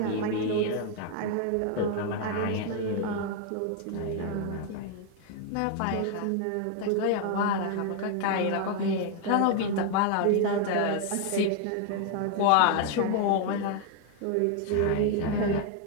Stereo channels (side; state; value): both; different; correlation 0.00